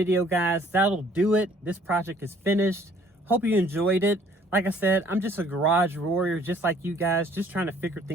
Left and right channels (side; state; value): both; normal; correlation 0.58